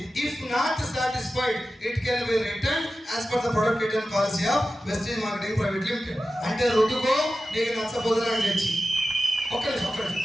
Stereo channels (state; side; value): normal; both; correlation 0.94